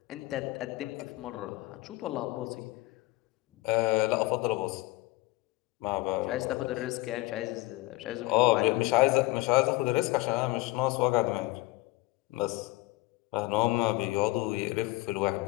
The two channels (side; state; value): right; quieter; 20.4 dB